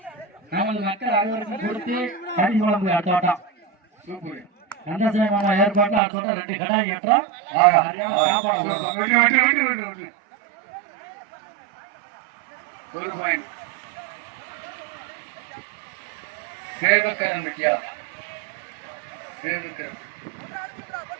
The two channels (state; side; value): drops out; left; at 6.0 s